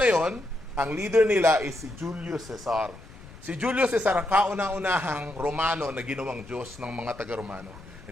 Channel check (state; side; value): noise; left; rumble, 19 dB below the sound